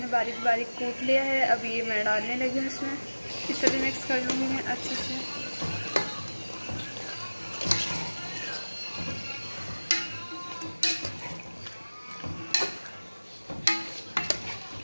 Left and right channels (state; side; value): inverted; both; correlation -1.00